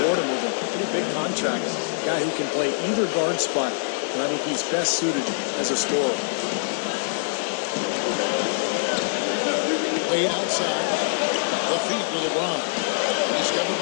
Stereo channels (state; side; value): silent; right; 61 dB below the other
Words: him with a pretty big contract. A guy who can play either guard spot, and I think he's best suited as a scorer. Wade outside. The feed to LeBron. Discovered